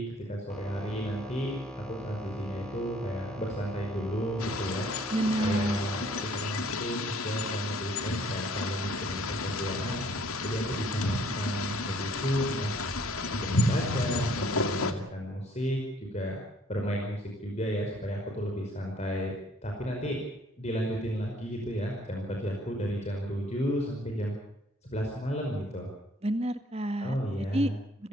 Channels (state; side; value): normal; both; correlation 0.60